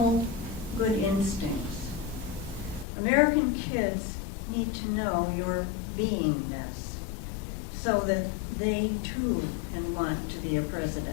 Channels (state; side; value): drops out; right; at 2.9 s